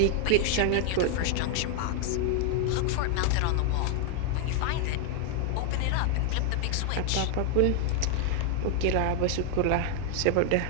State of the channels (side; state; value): both; different; correlation 0.00